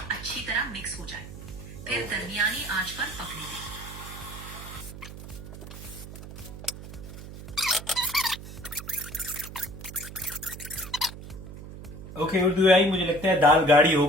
अच्छी तरह मिक्स हो जाए। फिर दरमियानी आंच पर पकने दें। ओके उर्दू आई, मुझे लगता है दाल गाढ़ी हो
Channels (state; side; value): noise; right; hum, 13 dB below the sound